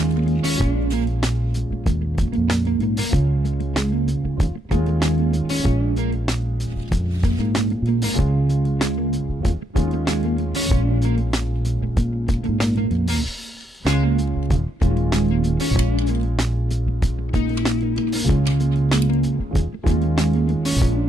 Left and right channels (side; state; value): both; normal; correlation 0.80